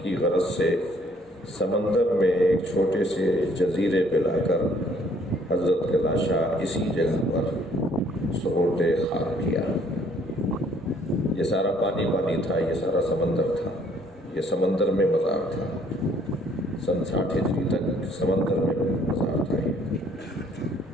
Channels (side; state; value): both; normal; correlation 0.62